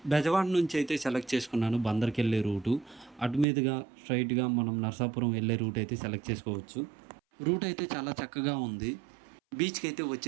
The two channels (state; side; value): drops out; left; at 3.5 s